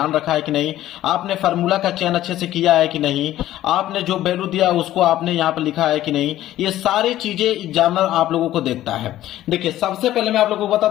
रखा है कि नहीं, आपने फार्मूला का चयन अच्छे से किया है कि नहीं, आपने जो वैल्यू दिया उसको आपने यहाँ पर लिखा है कि नहीं। ये सारी चीजें एग्जामिनर आप लोगों को देखता है। देखिए सबसे पहले मैं आप लोगों को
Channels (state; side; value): quieter; right; 13.8 dB